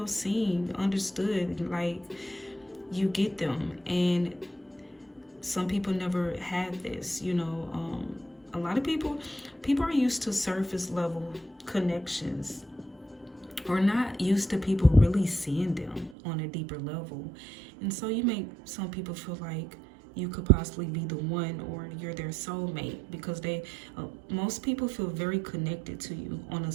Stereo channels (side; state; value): left; drops out; at 16.2 s